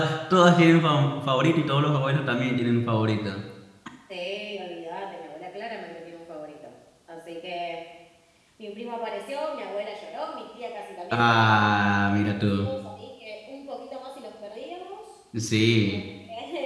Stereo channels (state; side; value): identical; both; correlation 1.00